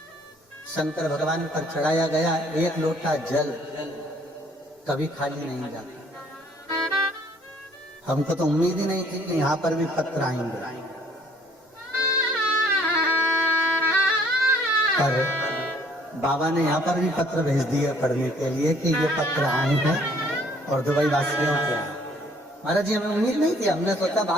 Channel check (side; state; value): both; normal; correlation 0.61